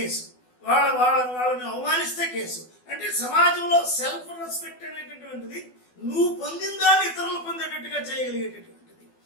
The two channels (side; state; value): right; late; 12 ms